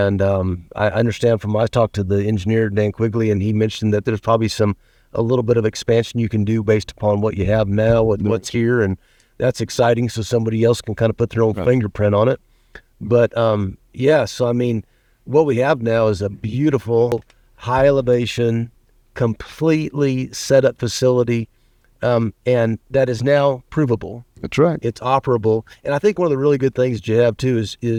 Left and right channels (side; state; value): both; identical; correlation 1.00